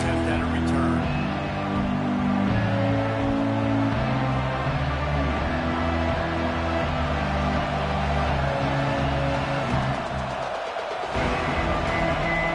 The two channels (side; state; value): both; identical; correlation 1.00